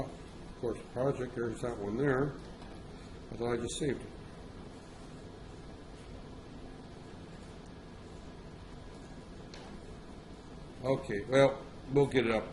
of course, project, there's that one there. I thought I just saved it. Okay, well, we'll get it up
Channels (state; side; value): identical; both; correlation 1.00